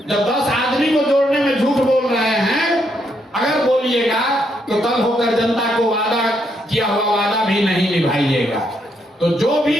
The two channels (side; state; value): both; normal; correlation 0.76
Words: 10 आदमी को जोड़ने में झूठ बोल रहे हैं, अगर बोलिएगा तो कल होकर जनता को वादा किया हुआ वादा भी नहीं निभाइएगा। तो जो